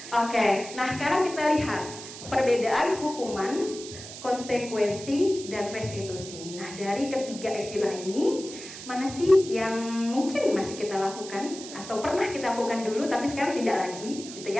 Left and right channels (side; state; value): right; noise; hiss, 12 dB below the sound